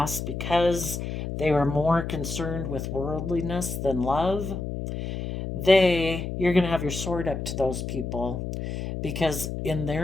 because they were more concerned with worldliness than love. You're going to have your sword up to those people, because in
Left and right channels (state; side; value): noise; left; hum, 5 dB below the sound